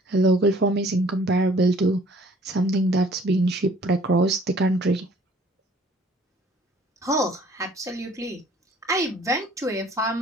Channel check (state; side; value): normal; both; correlation 0.55